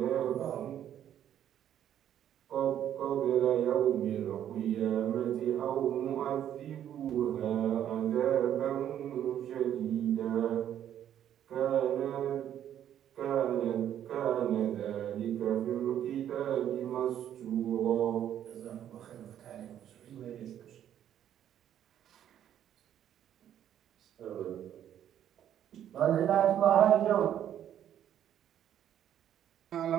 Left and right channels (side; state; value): left; quieter; 10.5 dB